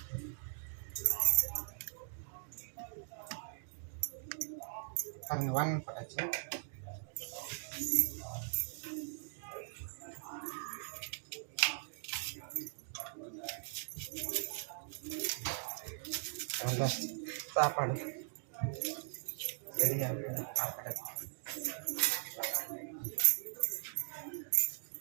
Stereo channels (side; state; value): left; silent; digital silence